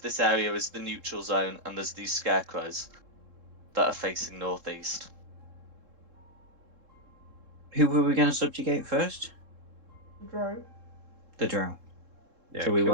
this area as the neutral zone, and there's these scarecrows that are facing northeast. who were we going to subjugate first? The drow. The drow. Yeah, So we kill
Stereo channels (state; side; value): late; left; 3.7 ms